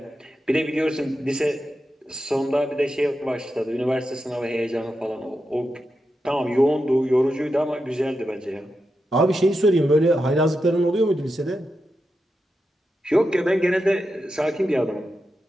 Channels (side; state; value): both; normal; correlation 0.88